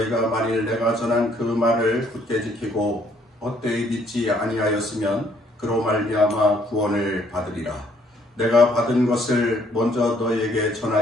만일 내가 전한 그 말을 굳게 지키고 헛되이 믿지 아니하였으면 그로 말미암아 구원을 받으리라. 내가 받은 것을 먼저 너희에게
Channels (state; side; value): normal; both; correlation 0.65